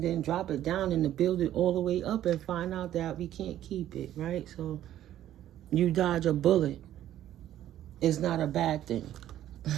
then drop it down and to build it all the way up and find out that we can't keep it, right? So you dodge a bullet. is not a bad thing.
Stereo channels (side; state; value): left; quieter; 12.3 dB